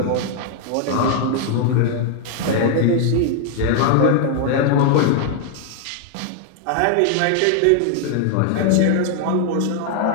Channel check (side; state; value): both; different; correlation 0.00